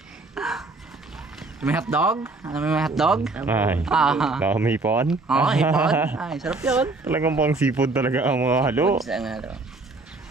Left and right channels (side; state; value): left; quieter; 3.4 dB